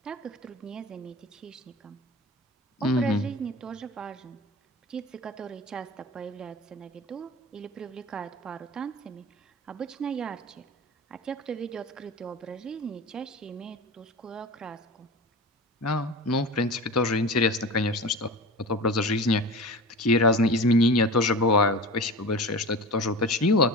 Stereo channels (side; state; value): both; normal; correlation 0.31